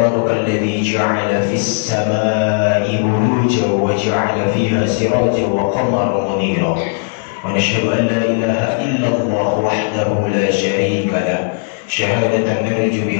الذي جعل في السماء بروجا وجعل فيها سراجا وقمرا منيرا ونشهد أن لا إله إلا الله وحده لا شريك له شهادة نرجو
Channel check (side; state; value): right; silent; digital silence